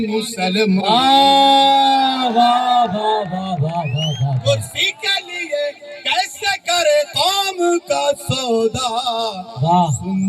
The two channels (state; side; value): identical; both; correlation 1.00